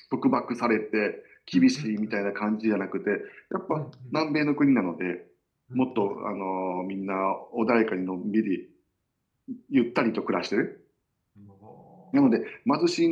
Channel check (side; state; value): both; identical; correlation 1.00